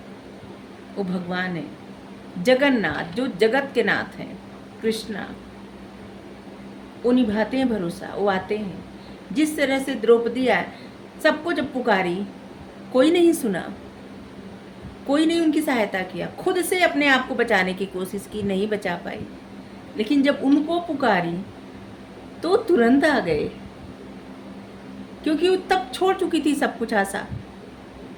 वो भगवान है, जगन्नाथ, जो जगत के नाथ हैं, कृष्णा। वो निभाते हैं भरोसा, वो आते हैं। जिस तरह से द्रौपदी आए, सबको जब पुकारी, कोई नहीं सुना, कोई नहीं उनकी सहायता किया, खुद से अपने आप को बचाने की कोशिश की, नहीं बचा पाई। लेकिन जब उनको पुकारी तो तुरंत आ गए, क्योंकि वो तब छोड़ चुकी थी सब कुछ आशा।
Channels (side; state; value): both; identical; correlation 1.00